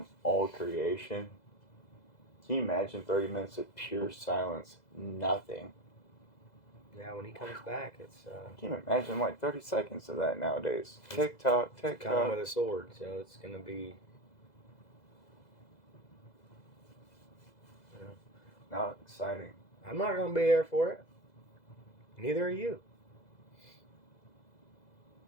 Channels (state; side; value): late; right; 2.0 ms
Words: all creation. Can you imagine 30 minutes of pure silence? Nothing. yeah, when he comes back, it's Can you imagine like 30 seconds of that nowadays? Tick tock, tick coming tock. with a sword, so it's gonna be. Not exciting. I'm not gonna be there for it. Neither are you.